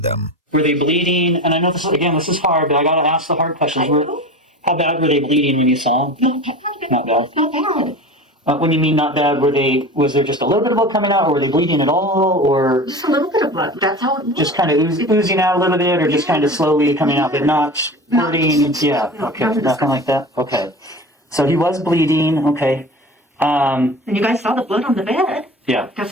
them. Were they bleeding? And I know this is hard, but I got to ask the hard questions. How bad were they bleeding when you saw them? Not bad. Not bad. When you mean not bad, was there just a little bit of blood coming out, or were they bleeding at all, or Just a little bit of blood. That's how it was. just kind of oozing out a little bit, or just kind of slowly coming out, but not squirting? Yeah, okay, nothing like that. Okay. So he was bleeding, okay. And you guys saw the blood on the bed. Yeah,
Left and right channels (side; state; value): both; normal; correlation 0.33